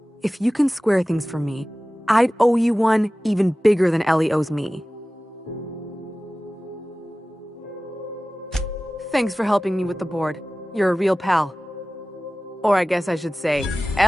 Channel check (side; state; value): both; normal; correlation 0.97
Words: If you can square things for me, I'd owe you one even bigger than Ellie owes me. Thanks for helping me with the board. You're a real pal. Or I guess I should say,